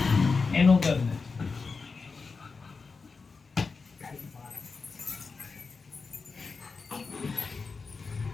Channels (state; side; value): quieter; right; 4.6 dB